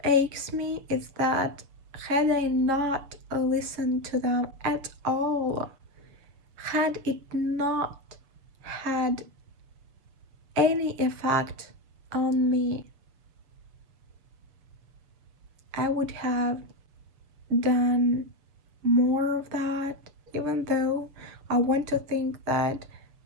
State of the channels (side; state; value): left; late; 7.4 ms